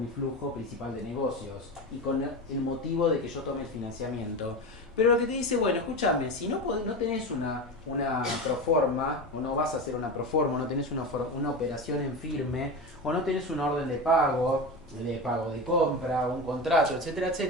flujo principal de negocios y con el motivo de que yo tome el financiamiento. Pero lo que te dice, bueno, escúchame, si no, no tenés una proforma, o no vas a hacer una proforma, o no tenés una operación en firme, o no tenés una orden de pago de compra, un contrato, etcétera,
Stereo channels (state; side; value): normal; both; correlation 0.23